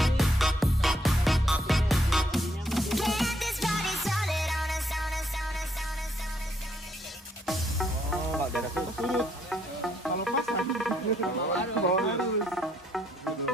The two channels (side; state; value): both; normal; correlation 0.71